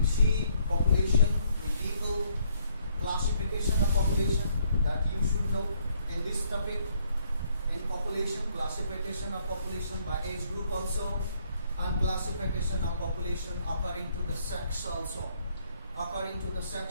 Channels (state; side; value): inverted; both; correlation -0.68